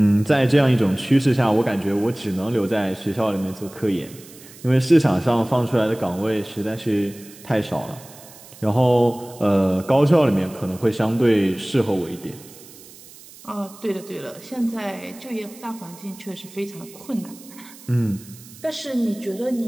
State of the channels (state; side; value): noise; right; hiss, 20 dB below the sound